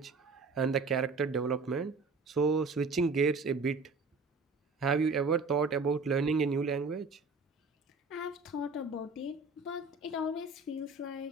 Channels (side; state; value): left; quieter; 3.9 dB